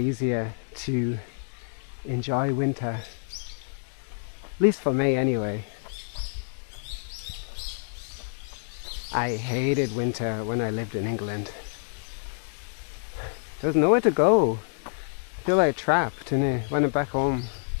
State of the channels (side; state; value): right; silent; digital silence